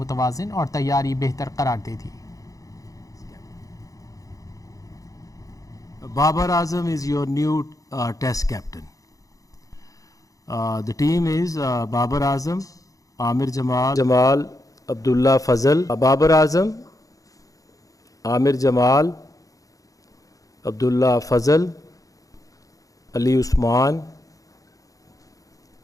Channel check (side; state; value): right; late; 0.17 ms